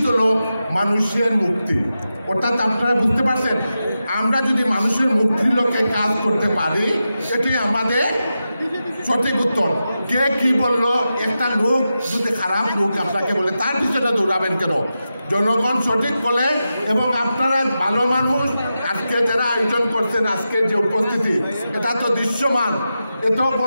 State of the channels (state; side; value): inverted; both; correlation -0.90